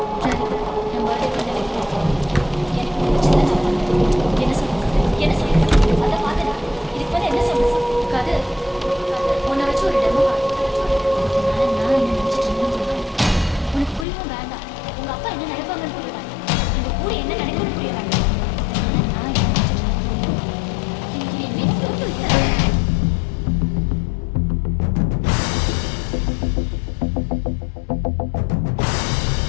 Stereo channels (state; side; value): drops out; right; at 14.1 s